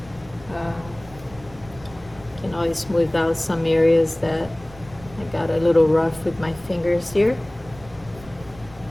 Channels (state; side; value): noise; right; rumble, 20 dB below the sound